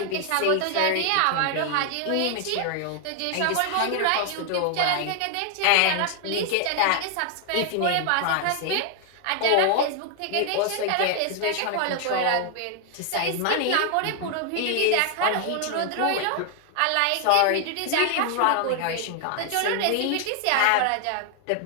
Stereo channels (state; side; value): different; both; correlation 0.00